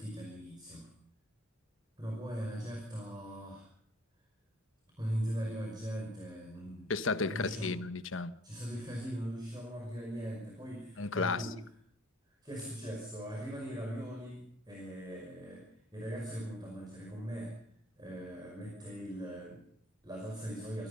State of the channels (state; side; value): normal; both; correlation 0.55